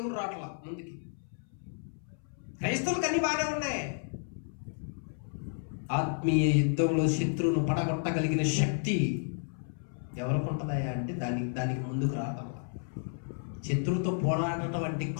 రావట్లా ముందుకి. క్రైస్తవులకు అన్ని బాగానే ఉన్నాయి. ఆత్మీయ యుద్ధంలో శత్రువును పడగొట్టగలిగిన శక్తి ఎవరికి ఉంటుందయా అంటే దానికి ముందుకు రావటం. శత్రువుతో పోరాడటం అంటే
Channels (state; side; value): silent; right; 57 dB below the other